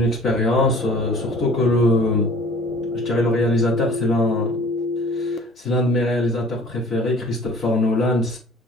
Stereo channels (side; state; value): both; normal; correlation 0.49